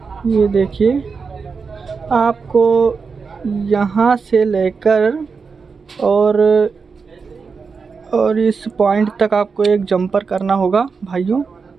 ये देखिए, आपको यहाँ से लेकर और इस पॉइंट तक आपको एक जंपर करना होगा भाइयों।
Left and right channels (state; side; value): quieter; left; 5.1 dB